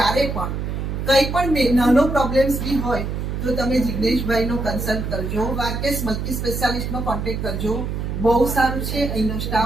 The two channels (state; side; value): noise; right; hum, 3 dB below the sound